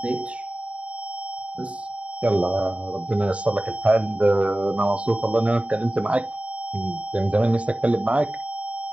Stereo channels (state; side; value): late; left; 0.064 ms